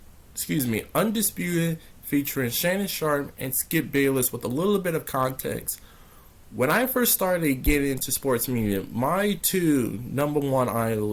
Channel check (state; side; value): identical; both; correlation 1.00